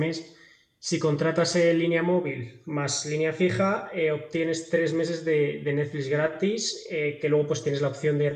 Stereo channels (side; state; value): both; identical; correlation 1.00